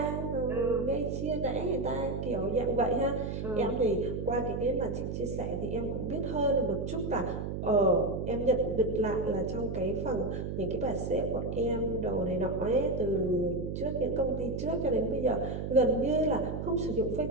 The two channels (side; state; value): right; noise; hum, 4 dB below the sound